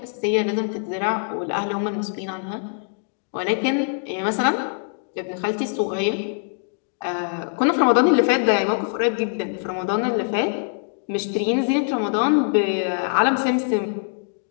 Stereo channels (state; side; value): silent; right; digital silence